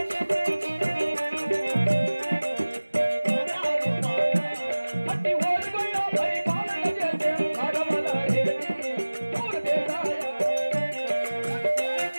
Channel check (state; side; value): inverted; both; correlation -1.00